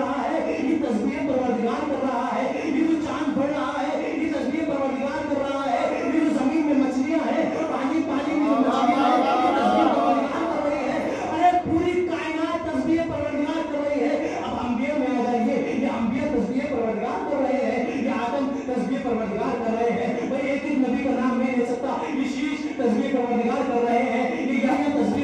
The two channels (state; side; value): identical; both; correlation 1.00